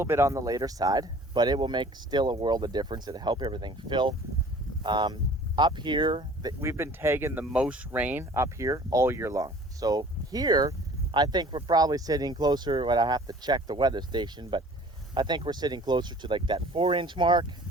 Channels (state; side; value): normal; both; correlation 0.49